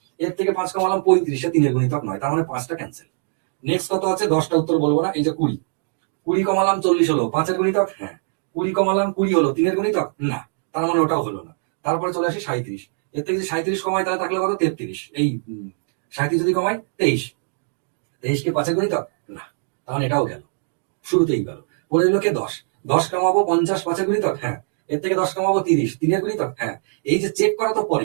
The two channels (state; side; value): silent; left; digital silence